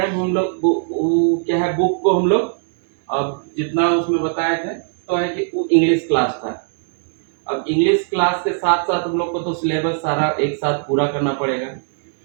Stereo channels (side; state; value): left; silent; 62 dB below the other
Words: हम लोग क्या है, बुक को हम लोग अब जितना उसमें बताए थे तो है कि वो इंग्लिश क्लास था। अब इंग्लिश क्लास के साथ साथ हम लोग को तो सिलेबस सारा एक साथ पूरा करना पड़ेगा।